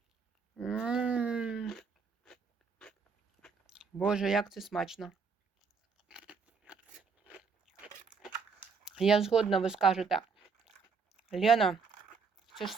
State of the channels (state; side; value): quieter; left; 5.2 dB